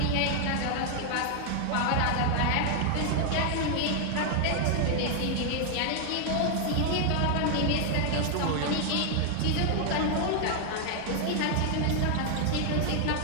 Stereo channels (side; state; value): both; different; correlation 0.00